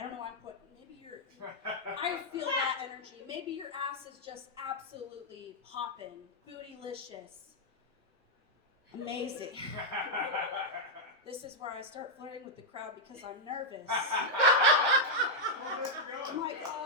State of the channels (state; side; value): normal; both; correlation -0.04